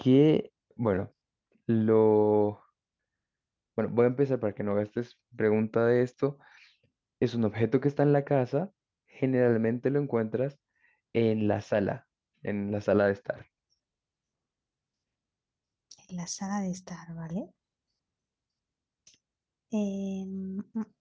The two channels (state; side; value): identical; both; correlation 1.00